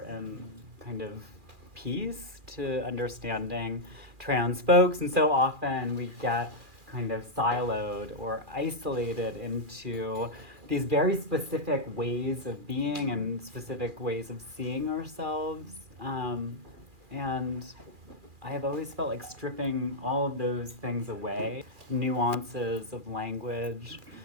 kind of piece to understanding trans folks. And so often we get kind of siloed or isolated into these very specific ways of being and specific ways of seeing ourselves. And I have always felt like stripping all of those things away, nuances of language.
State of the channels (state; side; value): late; left; 2.4 ms